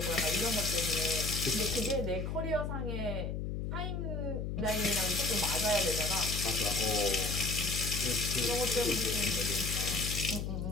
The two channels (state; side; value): noise; left; hum, 3 dB below the sound